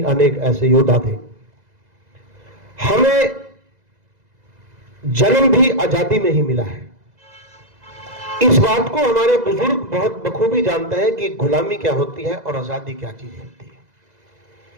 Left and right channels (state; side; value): late; left; 2.0 ms